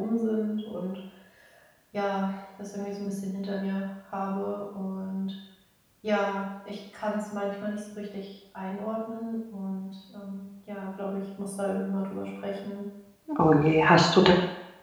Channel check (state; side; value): identical; both; correlation 1.00